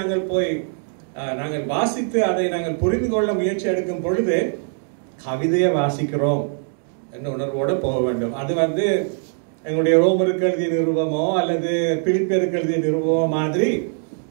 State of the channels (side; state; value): left; silent; 64 dB below the other